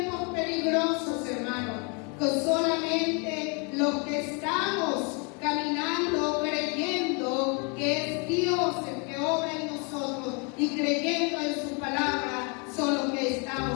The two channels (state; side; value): quieter; right; 34.1 dB